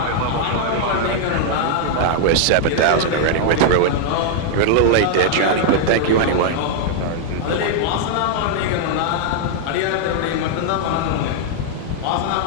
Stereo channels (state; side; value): different; both; correlation 0.00